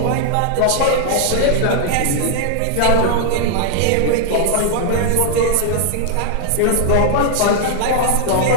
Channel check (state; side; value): different; both; correlation -0.01